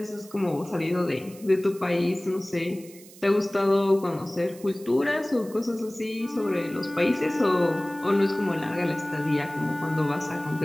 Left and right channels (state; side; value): noise; right; hiss, 21 dB below the sound